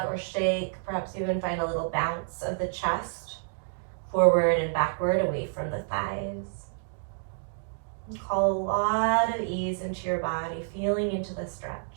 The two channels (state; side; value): silent; left; digital silence